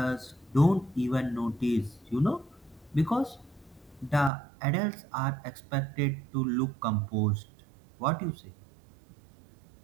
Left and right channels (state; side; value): drops out; left; at 4.3 s